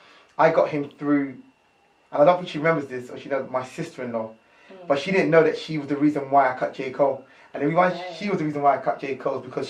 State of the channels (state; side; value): identical; both; correlation 1.00